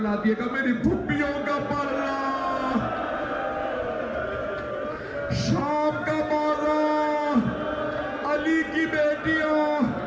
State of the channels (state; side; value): identical; both; correlation 1.00